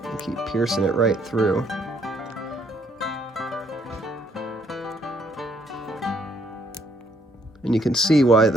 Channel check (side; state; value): both; normal; correlation 0.68